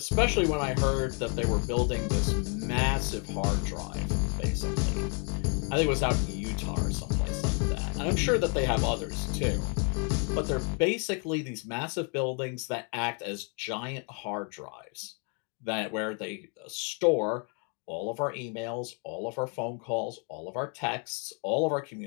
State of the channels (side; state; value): right; quieter; 39.2 dB